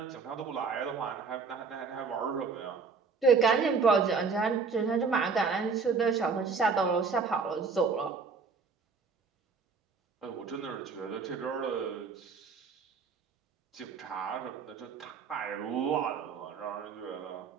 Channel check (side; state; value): left; quieter; 5.0 dB